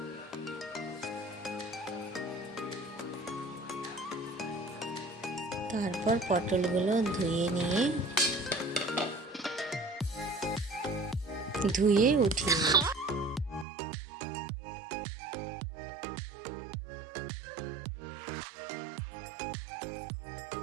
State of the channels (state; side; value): drops out; left; at 13.7 s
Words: তারপর পটলগুলো ধুয়ে উঠিয়ে নিই।